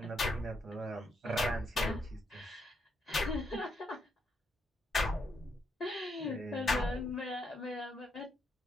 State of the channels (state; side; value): normal; both; correlation 0.77